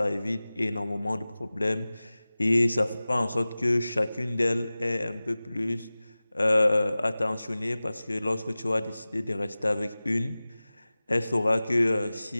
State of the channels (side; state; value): both; inverted; correlation -0.97